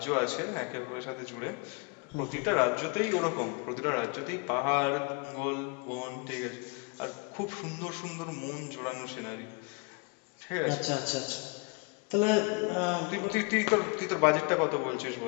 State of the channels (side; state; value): right; quieter; 31.0 dB